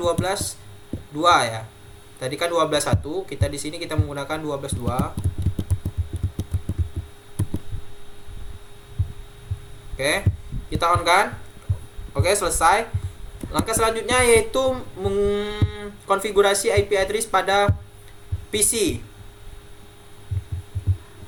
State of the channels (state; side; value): identical; both; correlation 1.00